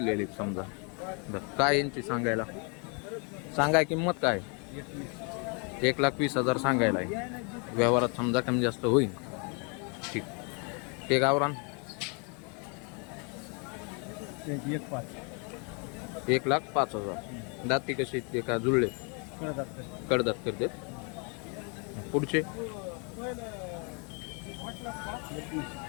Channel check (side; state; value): right; quieter; 35.5 dB